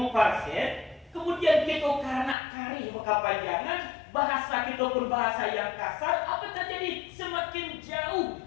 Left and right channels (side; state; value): right; drops out; at 2.4 s